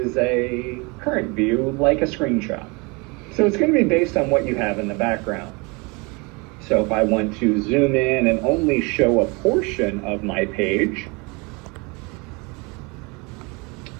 a current view, like a screenshot. So it's going to be based on what you have in the background. So if I want to zoom in and only show a portion of my page,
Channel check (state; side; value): quieter; left; 28.5 dB